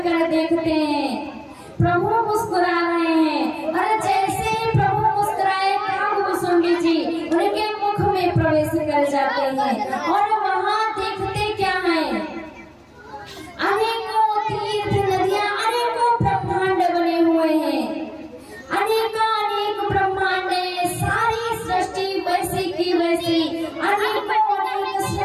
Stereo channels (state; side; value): identical; both; correlation 1.00